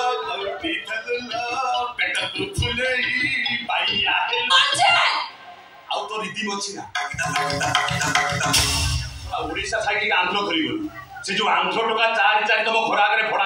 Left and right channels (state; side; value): identical; both; correlation 1.00